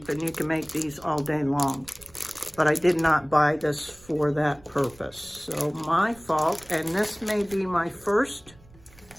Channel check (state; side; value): noise; right; rumble, 25 dB below the sound